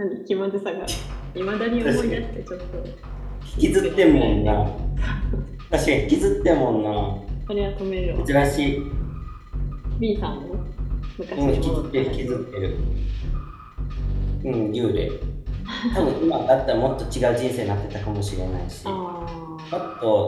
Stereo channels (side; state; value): both; identical; correlation 1.00